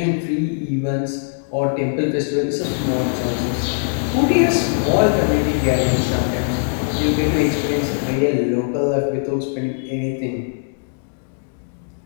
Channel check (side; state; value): right; silent; digital silence